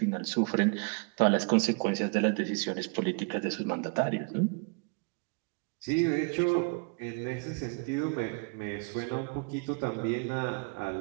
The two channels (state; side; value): quieter; left; 34.0 dB